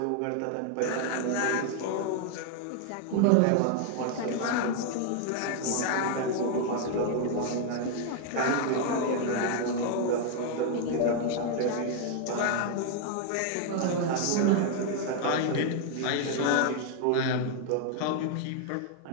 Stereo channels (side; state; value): both; different; correlation 0.00